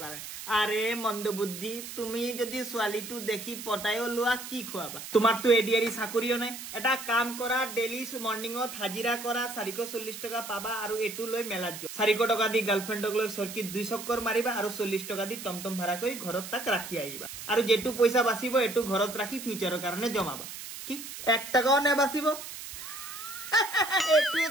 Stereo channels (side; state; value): right; noise; hiss, 10 dB below the sound